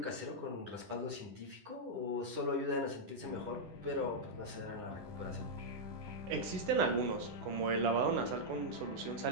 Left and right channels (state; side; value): late; left; 10 ms